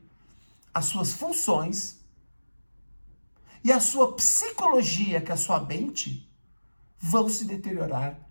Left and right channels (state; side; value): inverted; both; correlation -1.00